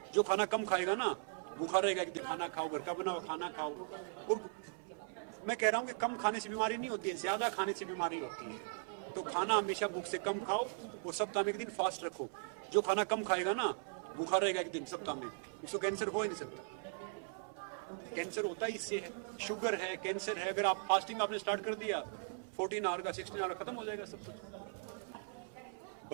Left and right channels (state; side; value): silent; left; 52 dB below the other